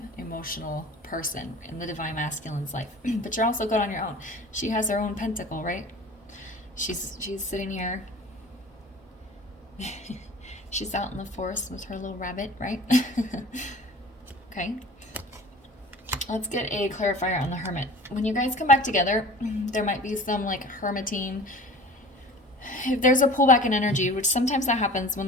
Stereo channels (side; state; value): both; normal; correlation 0.42